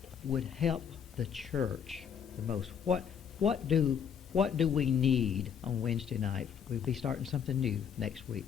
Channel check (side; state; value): right; quieter; 7.7 dB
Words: would help the church the most? What do we need on Wednesday night? We'll be starting something new next week.